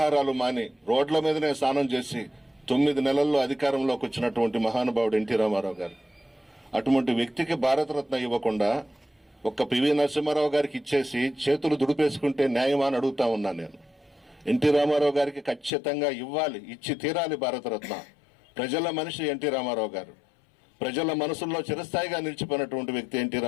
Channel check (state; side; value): drops out; right; at 15.7 s